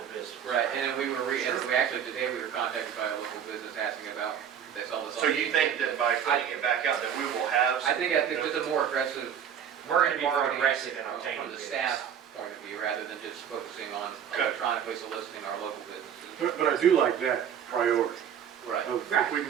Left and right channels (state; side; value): quieter; left; 8.6 dB